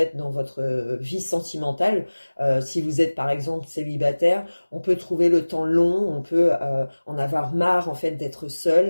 dans votre vie sentimentale. Si vous êtes par exemple célibataire, on peut trouver le temps long, on peut en avoir marre en fait d'être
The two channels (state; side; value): inverted; both; correlation -1.00